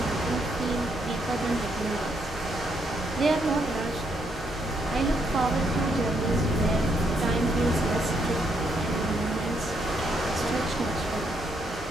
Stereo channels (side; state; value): both; normal; correlation 0.75